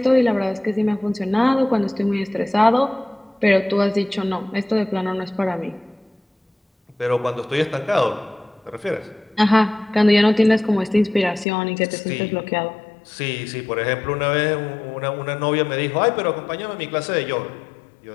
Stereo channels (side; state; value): right; drops out; at 11.5 s